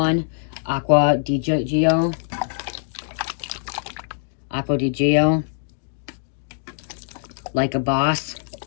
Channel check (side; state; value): right; silent; digital silence